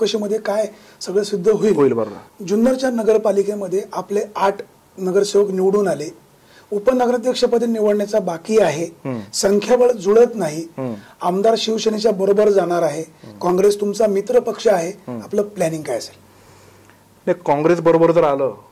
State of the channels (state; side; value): identical; both; correlation 1.00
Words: काय सगळं सिद्ध होईल. बरोबर. जुन्नरच्या नगरपालिकेमध्ये आपले 8 नगरसेवक निवडून आले, उपनगराध्यक्षपदी निवडण्याचा बाकी आहे, संख्याबळ जुळत नाही, आमदार शिवसेनेच्या बरोबर जाणार आहे, काँग्रेस तुमचा मित्र पक्ष आहे, आपलं प्लॅनिंग काय असेल? नाही, काँग्रेस बरोबर जर आलं